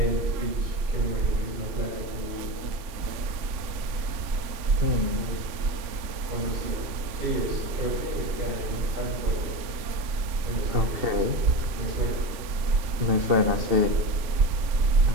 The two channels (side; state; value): left; late; 3.4 ms